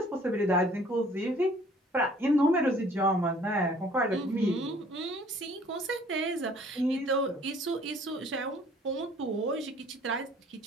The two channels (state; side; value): normal; both; correlation 0.55